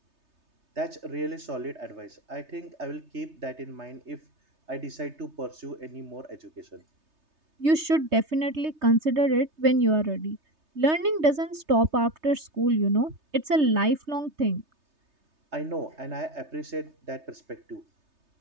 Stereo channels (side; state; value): left; late; 3.3 ms